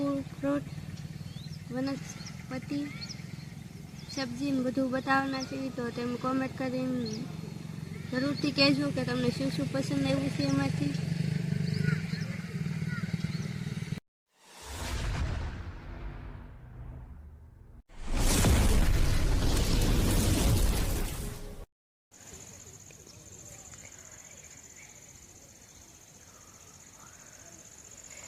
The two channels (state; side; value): identical; both; correlation 1.00